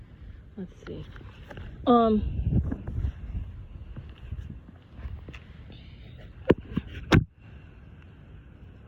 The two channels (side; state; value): both; identical; correlation 1.00